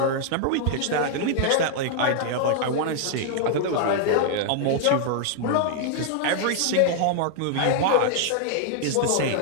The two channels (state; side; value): different; both; correlation -0.01